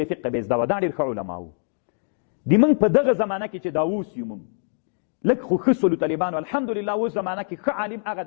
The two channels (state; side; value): silent; right; digital silence